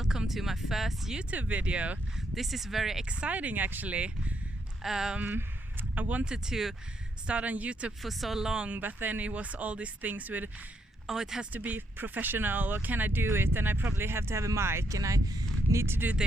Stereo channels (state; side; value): normal; both; correlation 0.77